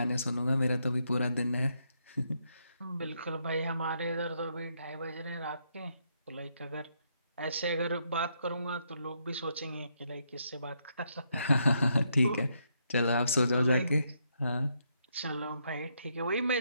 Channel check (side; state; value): both; inverted; correlation -0.77